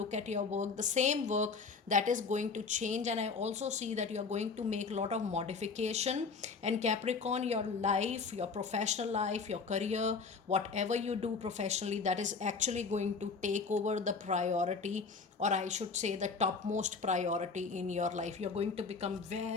at your work, the same work, that is going to change. And I also see that you are going to make a lot of modification. And Capricorn, your life, your professional life, your career, whatever you do professionally, that is actually going to take over the priority, or I should say the topmost priority in your life. You're going to become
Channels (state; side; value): quieter; right; 4.8 dB